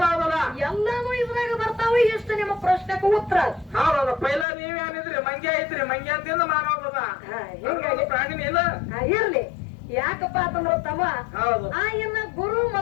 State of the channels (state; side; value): drops out; right; at 4.5 s